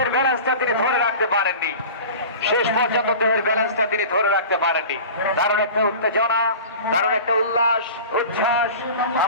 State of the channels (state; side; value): inverted; both; correlation -0.37